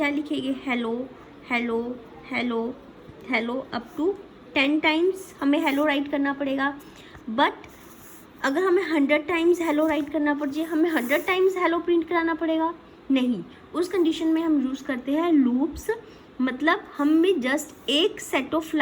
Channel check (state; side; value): identical; both; correlation 1.00